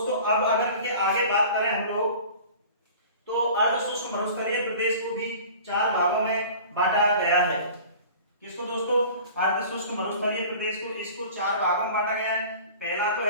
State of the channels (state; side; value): inverted; both; correlation -0.42